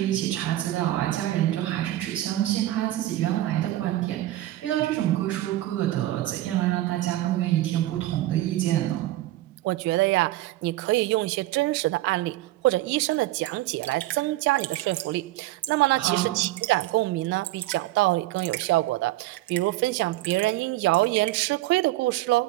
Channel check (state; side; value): quieter; left; 16.0 dB